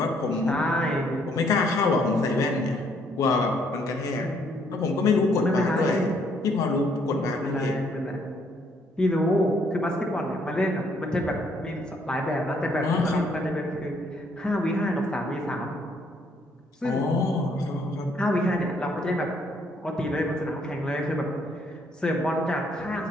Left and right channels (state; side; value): normal; both; correlation 0.68